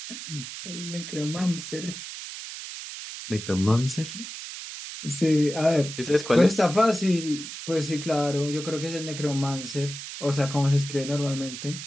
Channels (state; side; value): noise; right; hiss, 10 dB below the sound